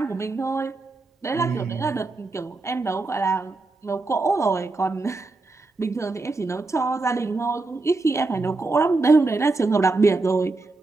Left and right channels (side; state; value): left; quieter; 3.4 dB